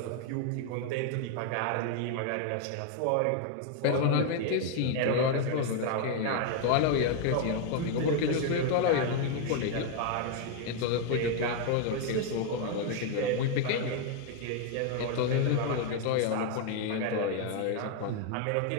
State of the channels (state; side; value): different; both; correlation 0.00